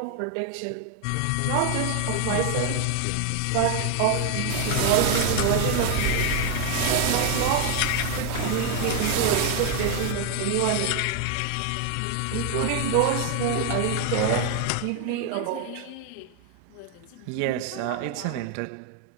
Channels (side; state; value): both; different; correlation 0.01